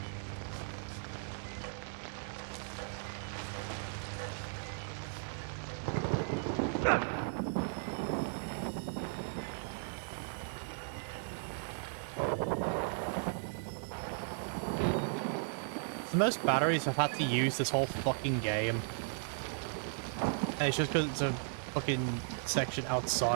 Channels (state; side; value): silent; left; 54 dB below the other